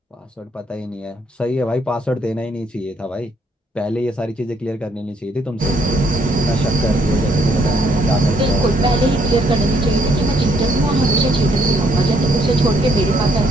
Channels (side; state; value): both; normal; correlation 0.69